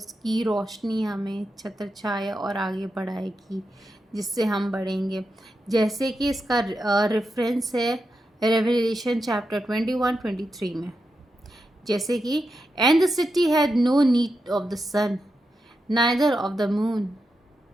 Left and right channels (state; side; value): normal; both; correlation 0.87